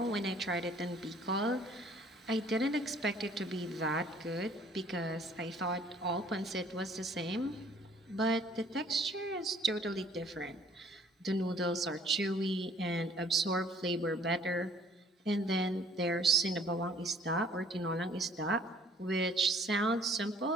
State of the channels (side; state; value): both; normal; correlation 0.57